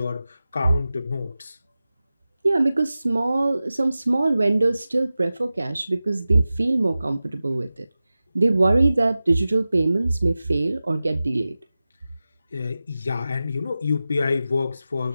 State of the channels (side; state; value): both; inverted; correlation -0.95